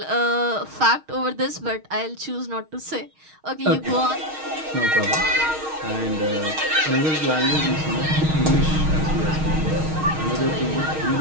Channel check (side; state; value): left; late; 6.4 ms